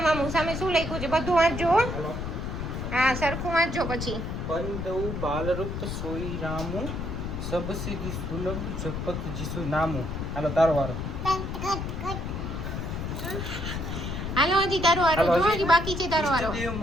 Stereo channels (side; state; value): left; noise; rumble, 4 dB below the sound